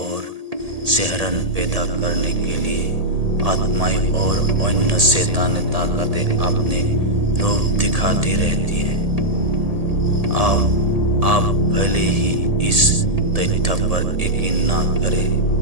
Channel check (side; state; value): left; late; 1.8 ms